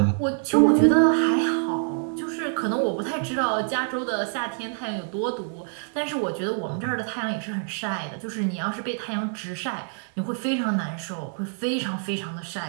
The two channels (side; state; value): left; silent; 61 dB below the other